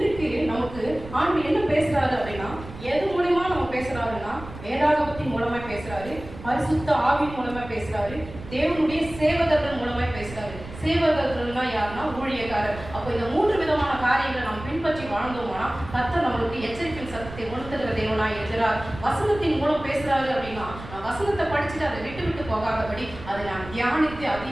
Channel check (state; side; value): noise; right; rumble, 14 dB below the sound